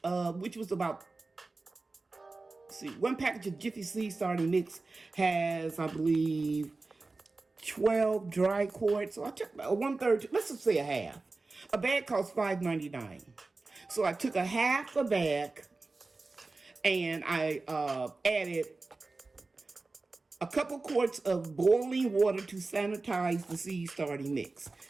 which was about, one package of Jiffy Seed Starting Mix has, I believe, 12 dry quarts. So I took about 1/3, let's just say a half. A bag costs $5.99. So I took a half a bag and I added a couple quarts of boiling water to sanitize the seed starting mix.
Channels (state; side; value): quieter; left; 3.5 dB